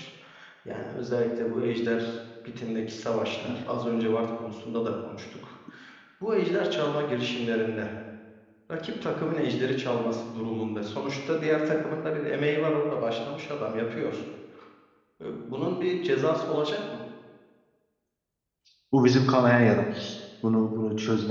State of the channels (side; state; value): both; identical; correlation 1.00